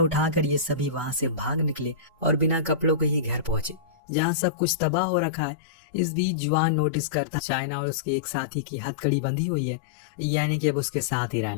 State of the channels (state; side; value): drops out; right; at 4.0 s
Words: उठाकर ये सभी वहां से भाग निकले और बिना कपड़ों के ही घर पहुंचे, जहाँ सब कुछ तबाह हो रखा है। इस बीच जुआन नोटिस करता चाइना और उसके एक साथी की हथकड़ी बंधी हुई है, यानी कि अब उसके साथ ही